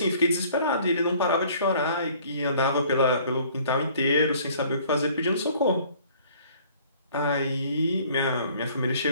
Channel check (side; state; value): both; inverted; correlation -0.55